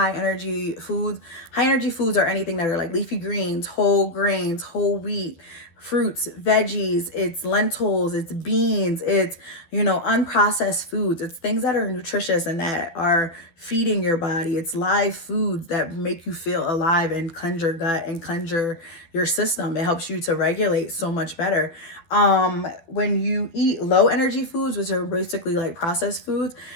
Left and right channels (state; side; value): late; right; 12 ms